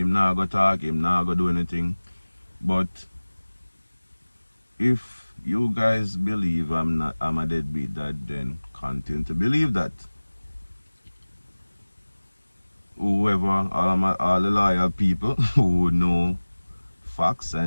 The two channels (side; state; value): both; inverted; correlation -1.00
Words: not go talk, him not go do anything. But if you guys believe I'm a deadbeat dad, then continue to believe that. Whoever, all the loyal people who know facts